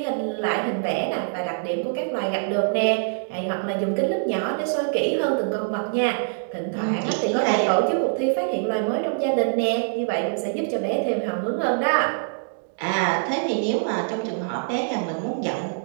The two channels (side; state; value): left; silent; digital silence